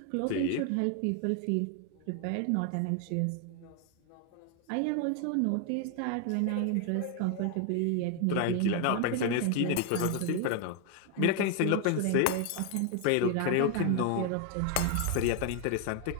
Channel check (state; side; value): different; both; correlation 0.01